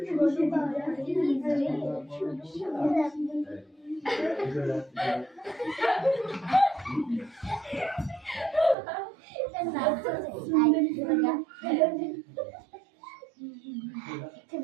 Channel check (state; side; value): drops out; left; at 8.8 s